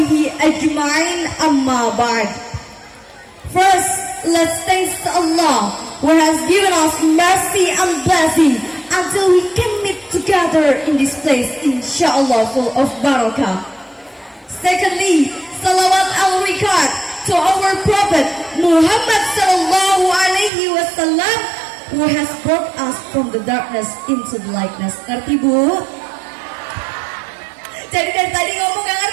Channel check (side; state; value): left; drops out; at 20.5 s